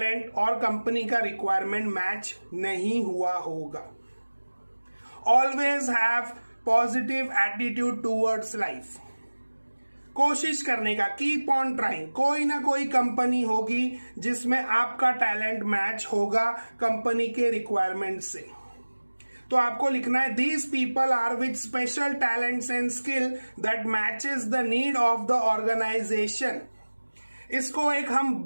और कंपनी का रिक्वायरमेंट मैच नहीं हुआ होगा। Always have positive attitude towards life. कोशिश करने का, कीप ऑन ट्राइंग। कोई ना कोई कंपनी होगी जिसमें आपका टैलेंट मैच होगा कंपनी के रिक्वायरमेंट से। तो आपको लिखना है, these people are with special talents and skill that matches the need of the organisation. इसको एक हम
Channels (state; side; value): inverted; both; correlation -1.00